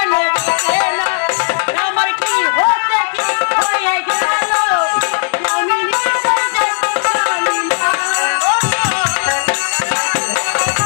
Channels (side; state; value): right; silent; digital silence